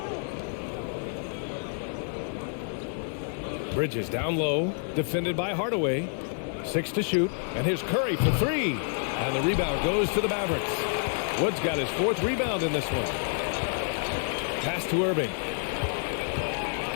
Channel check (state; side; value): silent; right; 58 dB below the other